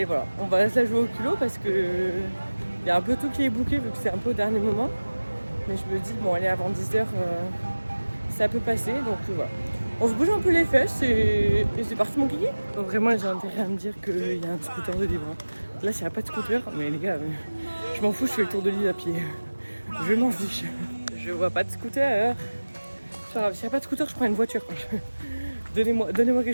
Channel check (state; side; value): inverted; both; correlation -1.00